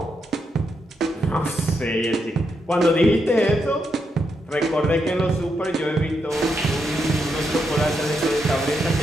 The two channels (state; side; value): normal; both; correlation 0.82